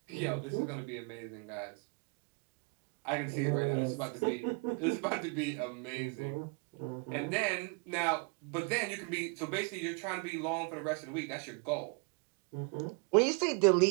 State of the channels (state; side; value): quieter; left; 33.7 dB